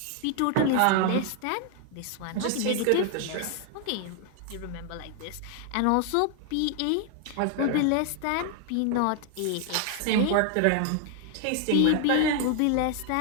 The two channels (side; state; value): both; different; correlation 0.00